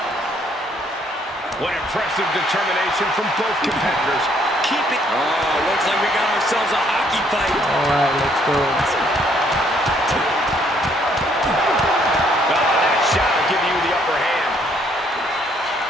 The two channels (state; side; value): normal; both; correlation 0.67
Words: What impressive determination from both competitors. Keeping... Oh, looks like we got ourselves a hockey fight. All right, let's go. That shot will give you the upper hand.